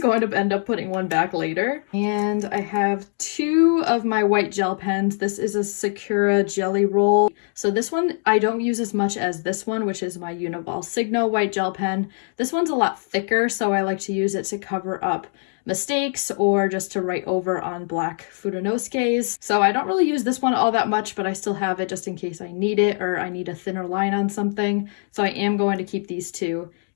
going to end up putting one back later. And I have 2 of my white gel pens. This is a Sakura jelly roll. So this one I don't use as much as this one, which is my uniball signo white gel pen. This one's a lot thicker, so I like to use it to cover up mistakes or just to write over on black fudenosukes. So I don't really use this one all that much, but I still have it just in case I need it or I need a thinner line on something. So I am going to keep these 2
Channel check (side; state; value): right; silent; 62 dB below the other